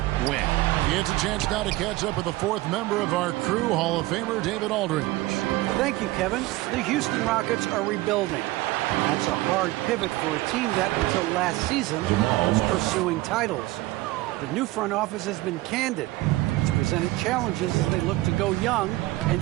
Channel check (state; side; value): quieter; left; 19.0 dB